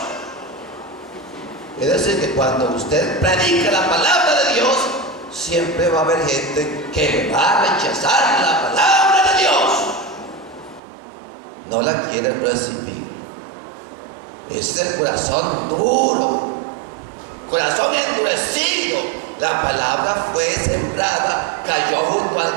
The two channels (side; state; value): left; drops out; at 10.8 s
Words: Es decir, que cuando usted predica la palabra de Dios, siempre va a haber gente que va a rechazar la palabra de Dios. No la quiere recibir. Ese es el corazón duro, corazón endurecido. La palabra fue sembrada, cayó junto